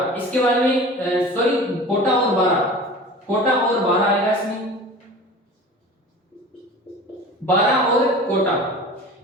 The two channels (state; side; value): normal; both; correlation 0.38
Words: इसके बाद में सॉरी कोटा और बारा। कोटा और बारा आएगा इसमें, बारा और कोटा।